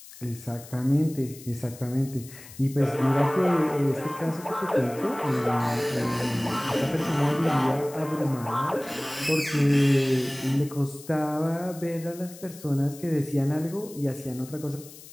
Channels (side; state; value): left; noise; hiss, 18 dB below the sound